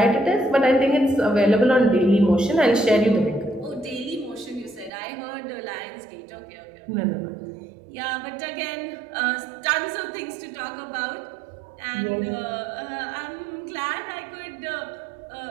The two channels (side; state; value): left; drops out; at 4.9 s